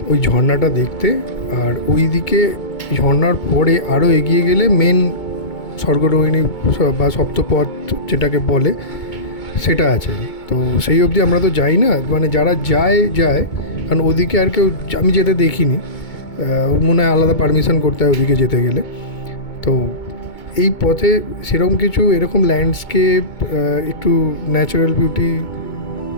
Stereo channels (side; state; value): right; late; 2.2 ms